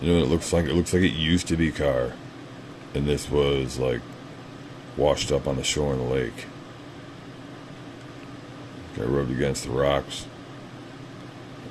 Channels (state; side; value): identical; both; correlation 1.00